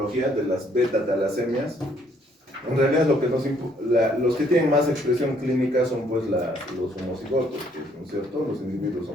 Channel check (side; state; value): both; normal; correlation 0.66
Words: de las beta-talasemias. En realidad los que tienen más expresión clínica son pues los homocigotos, ¿no es cierto? Los individuos